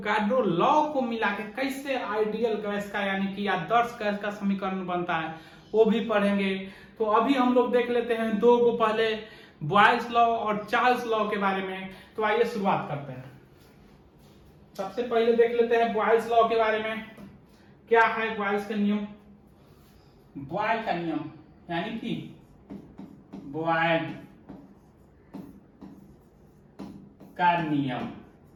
लॉ को मिला के कैसे आइडियल गैस का यानी कि आदर्श गैस का समीकरण बनता है वो भी पढ़ेंगे। तो अभी हम लोग देख लेते हैं दो को, पहले बॉयल्स लॉ और चार्ल्स लॉ के बारे में। तो आइए शुरुआत करते हैं। सबसे पहले देख लेते हैं बॉयल्स लॉ के बारे में। क्या है बॉयल्स का नियम? बॉयल का नियम यानी कि बॉयल का नियम,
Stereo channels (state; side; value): identical; both; correlation 1.00